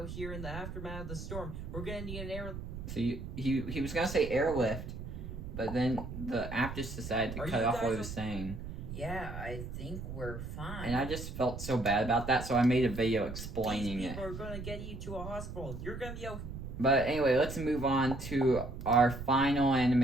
here in the aftermath of the storm. We're gonna need an air... So he was gonna say airlift, but then the app just decided to cut off what he was saying. Yeah, I think we're fine. And I just felt so bad about that, so I made a video explaining it. These people are gonna get you to a hospital. You're gonna be okay. But anyway, let's move on to our final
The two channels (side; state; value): right; noise; rumble, 8 dB below the sound